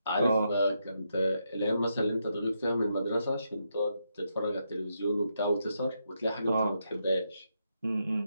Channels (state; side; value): inverted; both; correlation -0.81